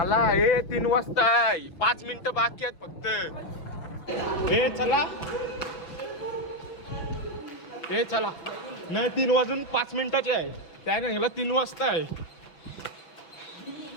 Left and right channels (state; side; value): late; right; 6.0 ms